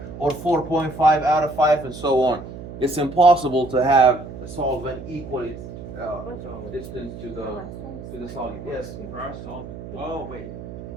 or 4.5 out of 5, and so on. It's impossible to have a solvent equally distance to the solute. Yes. For our solvent. Oh wait.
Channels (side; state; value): right; noise; hum, 12 dB below the sound